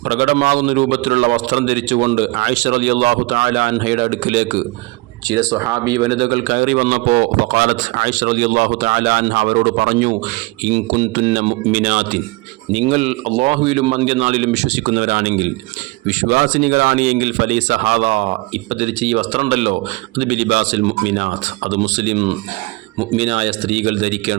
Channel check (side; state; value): left; quieter; 24.5 dB